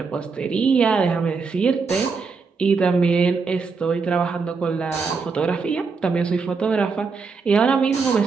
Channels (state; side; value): quieter; left; 4.8 dB